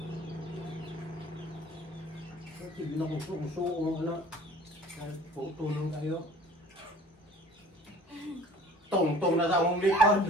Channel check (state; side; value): normal; both; correlation 0.49